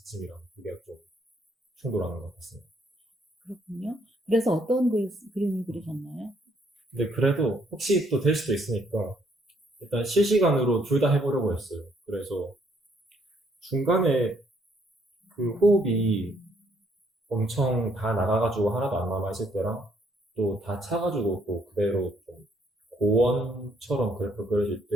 두 개가 좀 충돌하는 것 같습니다. 그렇군요. 그래서 어떤 그림을 그리셨나요? 근데 그래도 혹시 또 될 수도 있으니까 일단 실시간으로 둘 다 해보려고 했어요. 그래서 중간에 그 호흡이 엄청 다 나가가지고 하나도 안 남아있을 때랑 또 다 차가지고 또 그대로 좀 고원처럼 그래프 그려질 때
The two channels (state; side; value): normal; both; correlation 0.69